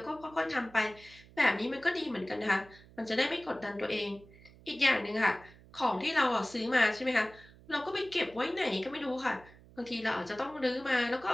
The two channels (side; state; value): right; noise; hum, 23 dB below the sound